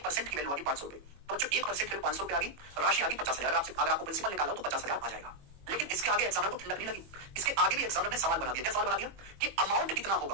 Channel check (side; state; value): left; late; 21 ms